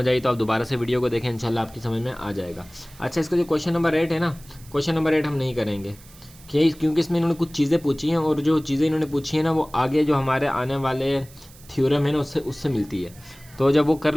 आई तो आप दोबारा से वीडियो को देखें, इंशाल्लाह आपकी समझ में आ जाएगा। अच्छा, इसका जो क्वेश्चन नंबर 8 है ना, क्वेश्चन नंबर 8 हम नहीं करेंगे क्योंकि इसमें इन्होंने कुछ चीज़ें पूछी हैं, और जो चीज़ें इन्होंने पूछी हैं ना वो आगे जो हमारे आने वाले थ्योरम है ना उससे मिलती है। तो जब वो कर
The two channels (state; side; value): noise; right; hiss, 23 dB below the sound